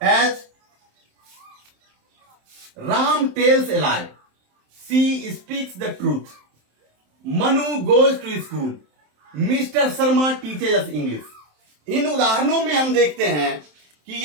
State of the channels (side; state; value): left; late; 27 ms